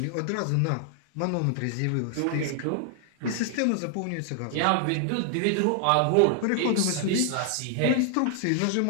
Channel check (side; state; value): both; different; correlation 0.00